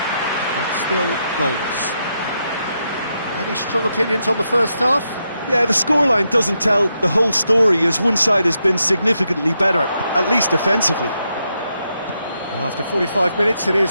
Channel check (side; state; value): both; inverted; correlation -0.82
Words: still goalless. Any strong opinions on the first half? Yeah, the scoreline doesn't tell the whole story, as one side has been significantly better, at least offensively. Well, after 45 minutes, it